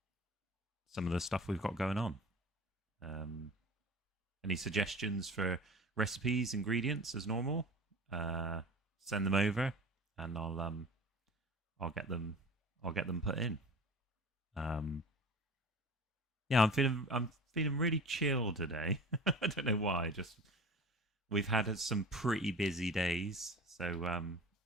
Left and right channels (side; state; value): both; normal; correlation 0.38